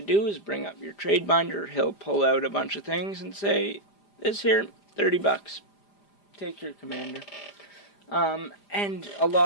do is bring up your trade binder. He'll pull out a bunch of things and say, this here, $30. Take your commander. And a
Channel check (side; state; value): right; late; 5.0 ms